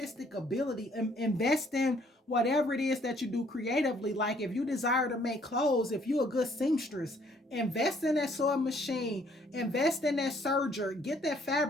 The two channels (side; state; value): both; normal; correlation 0.63